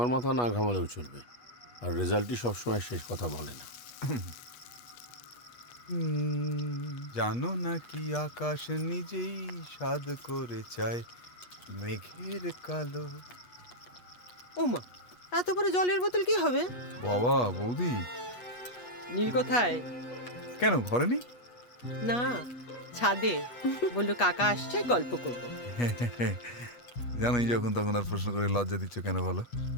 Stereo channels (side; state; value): right; late; 8.3 ms